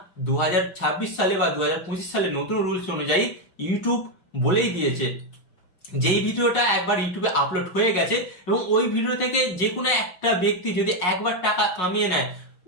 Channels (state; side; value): late; right; 5.5 ms